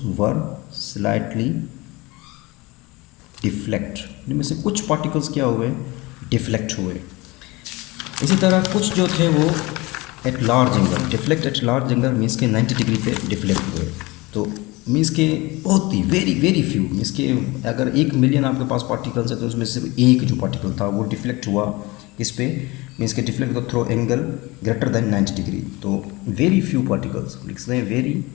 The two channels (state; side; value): quieter; right; 22.8 dB